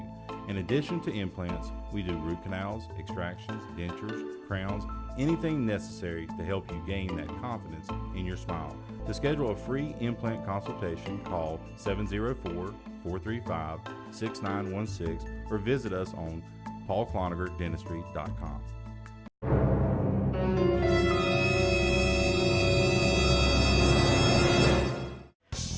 In addition to implants, we do root canals, extractions, dentures, crowns, anything necessary to help you gain that confidence in your smile. To schedule a free implant consultation, call 704-435-6916 or visit us on paulcloningerdentistry.com.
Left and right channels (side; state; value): both; identical; correlation 1.00